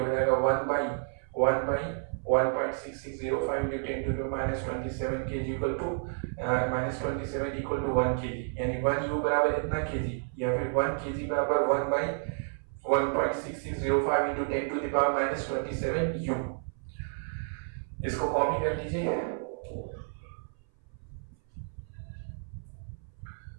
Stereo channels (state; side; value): silent; left; 57 dB below the other